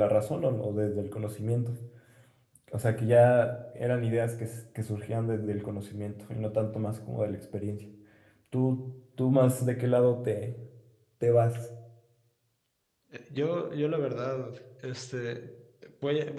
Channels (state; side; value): identical; both; correlation 1.00